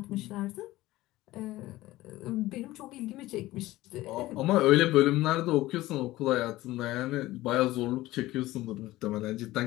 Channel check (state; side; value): quieter; right; 17.3 dB